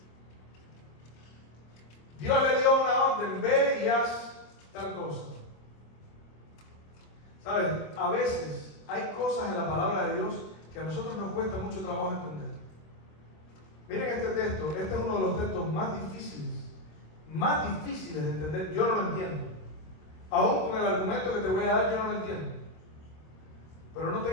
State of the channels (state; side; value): late; right; 26 ms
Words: Dios le dio una orden, ve y haz tal cosa. ¿Sabes? A veces hay cosas en la palabra de Dios que a nosotros nos cuesta mucho trabajo entender. Miren este texto, este es uno de los textos más difíciles de entender. Yo no lo entiendo. Aún con el argumento que te voy a dar, yo no lo entiendo. Pero no